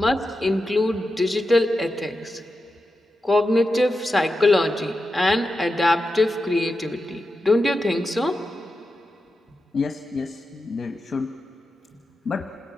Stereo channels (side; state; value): both; normal; correlation 0.90